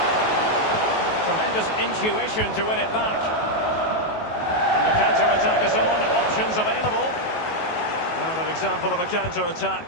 Tremendous intuition to win it back. And the counter-attack is on. Options available. Well, an example of a counter-attack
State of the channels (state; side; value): late; right; 19 ms